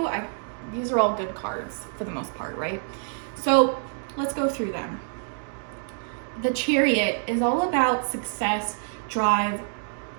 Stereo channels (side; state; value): left; silent; digital silence